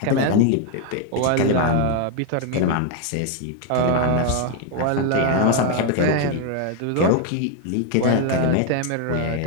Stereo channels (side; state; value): both; different; correlation 0.01